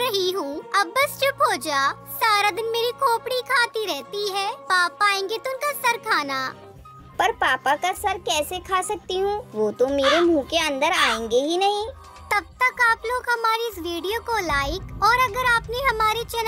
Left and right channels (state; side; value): identical; both; correlation 1.00